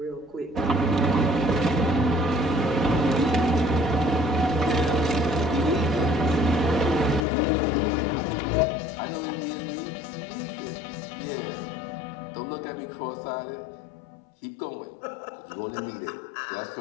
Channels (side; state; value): right; drops out; at 7.2 s